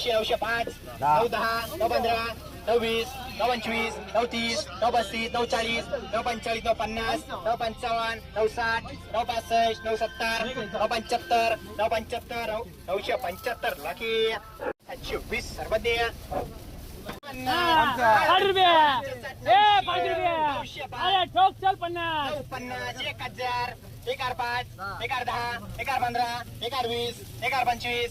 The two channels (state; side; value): identical; both; correlation 1.00